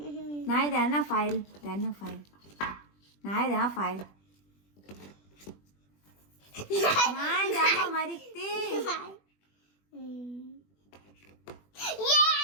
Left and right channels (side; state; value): right; late; 20 ms